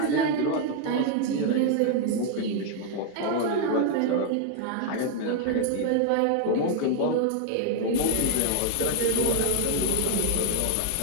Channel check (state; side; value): different; both; correlation 0.00